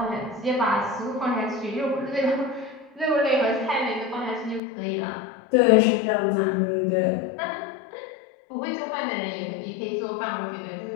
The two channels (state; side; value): drops out; right; at 4.6 s